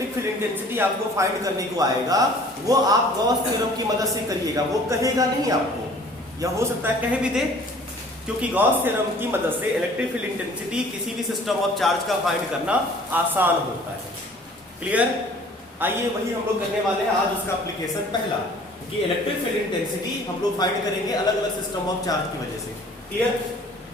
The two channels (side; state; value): both; normal; correlation 0.51